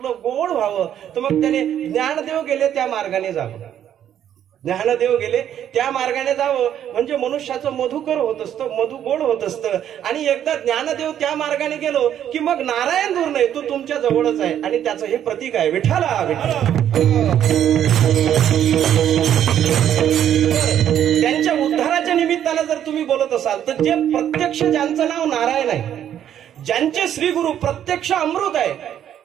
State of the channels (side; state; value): left; quieter; 10.2 dB